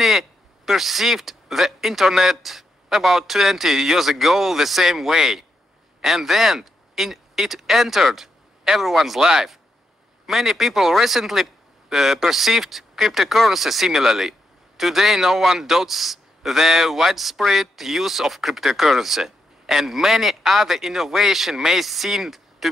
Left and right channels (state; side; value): normal; both; correlation 0.82